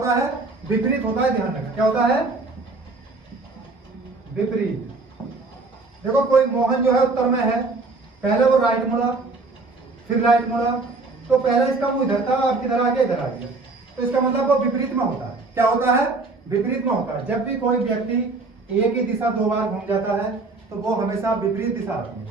है विपरीत होता है, ध्यान रखना क्या होता है विपरीत। देखो कोई मोहन जो है उत्तर में है, पहले वो राइट मुड़ा फिर राइट मुड़ा, तो पहले इसका मुंह इधर था अब किधर आ गया इधर आ गया, तो इसका मतलब वो विपरीत में होता है। क्या होता है विपरीत में होता है। जब भी कोई व्यक्ति एक ही दिशा 2 बार घूम जाता है तो वो हमेशा विपरीत दिशा आती है।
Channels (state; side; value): quieter; left; 3.6 dB